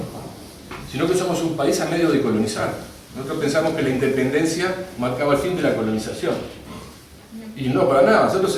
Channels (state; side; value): identical; both; correlation 1.00